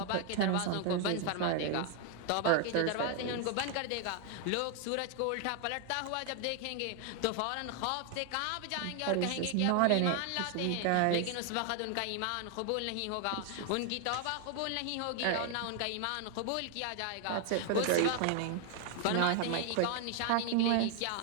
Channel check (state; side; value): different; both; correlation 0.00